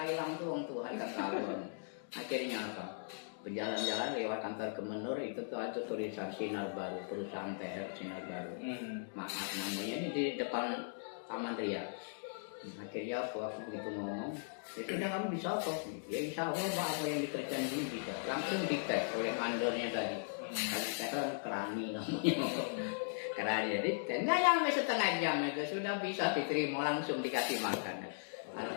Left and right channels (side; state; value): right; silent; digital silence